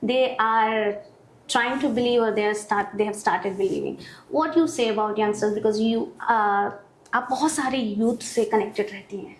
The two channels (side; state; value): both; identical; correlation 1.00